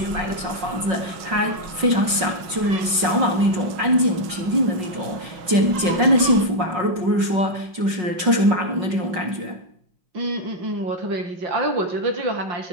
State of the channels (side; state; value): left; late; 5.5 ms